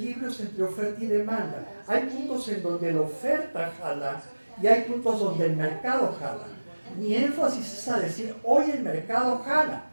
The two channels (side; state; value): both; inverted; correlation -1.00